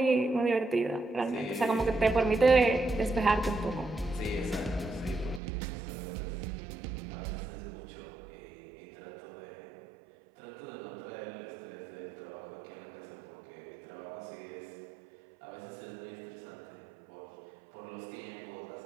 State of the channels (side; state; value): left; drops out; at 5.4 s